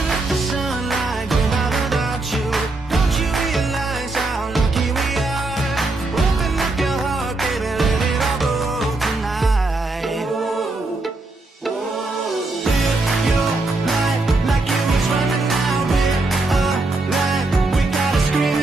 let the sunlight get out without you. Don't you realize how lucky we are? Open up your heart, baby, let it all go tonight. Live your life like it was running out. We're alive, we gotta scream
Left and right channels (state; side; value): quieter; left; 3.1 dB